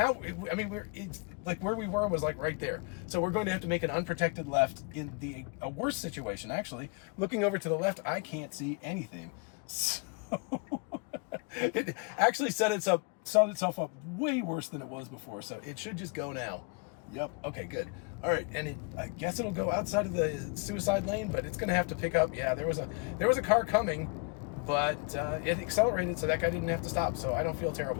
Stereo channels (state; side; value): quieter; right; 34.3 dB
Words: I mean, it's like where we were was like right there. So we're going to have to make an unprotected left in a worse situation, actually. Looking over to the left, I can't see anything. So it actually set itself up way worse than it was before, so it should just go now. Yep, okay, good. All right, and I guess it'll go outside of the suicide lane, but it's gonna have to pick up. Yeah, there was a car coming, but it accelerated, so that guy didn't have to stop, so I don't feel